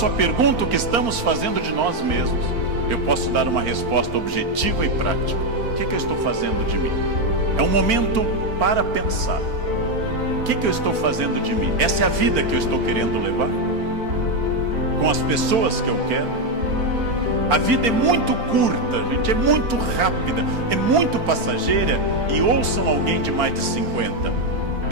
a pergunta o que estamos fazendo de nós mesmos, eu posso dar uma resposta objetiva e prática. O que eu estou fazendo de mim? É um momento para pensar. O que eu estou fazendo de mim? Essa é a vida que eu estou querendo levar? Com as pessoas que eu quero? A vida é muito curta, gente, é muito rápida, é muito passageira. E ouçam alguém de mais de 50.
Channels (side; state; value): left; late; 4.4 ms